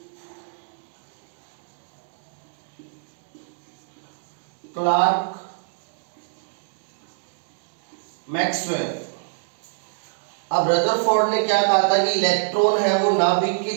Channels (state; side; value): silent; left; digital silence